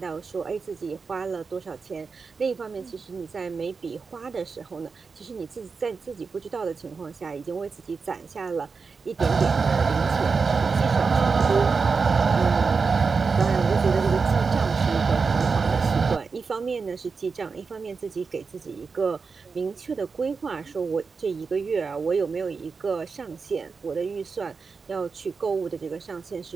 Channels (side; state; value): left; quieter; 4.9 dB